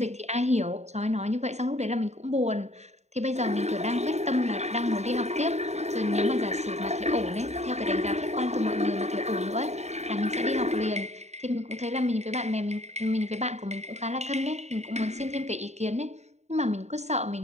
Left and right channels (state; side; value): late; left; 0.32 ms